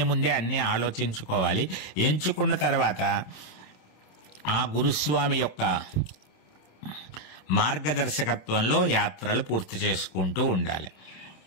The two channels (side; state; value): right; late; 27 ms